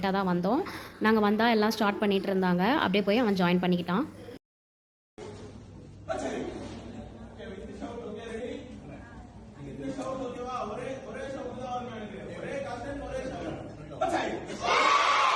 தான் வந்தோம். நாங்கள் வந்தால் எல்லாம் ஸ்டார்ட் பண்ணிகிட்டு இருந்தாங்க. அப்படியே போய் அவன் join பண்ணிக்கிட்டான்.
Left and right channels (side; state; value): both; identical; correlation 1.00